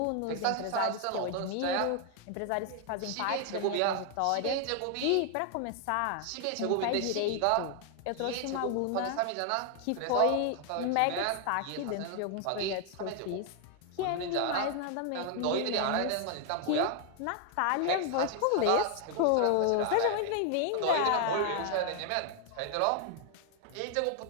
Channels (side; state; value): both; different; correlation 0.00